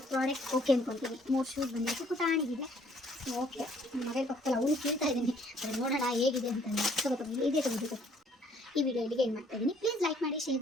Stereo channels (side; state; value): both; normal; correlation 0.62